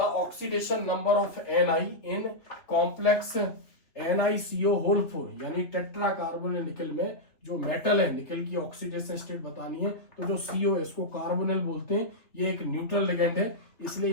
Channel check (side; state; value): right; late; 3.1 ms